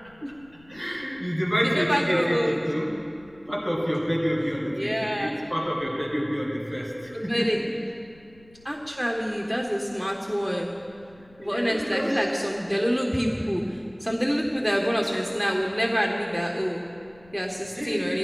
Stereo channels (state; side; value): noise; left; rumble, 27 dB below the sound